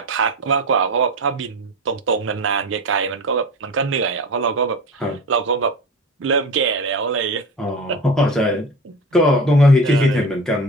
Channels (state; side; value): normal; both; correlation 0.31